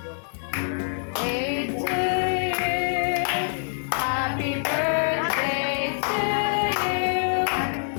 Birthday to you. Happy birthday to you.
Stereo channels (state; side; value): silent; right; digital silence